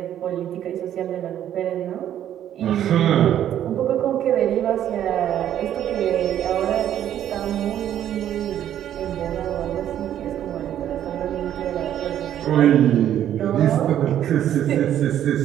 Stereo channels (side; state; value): left; quieter; 10.9 dB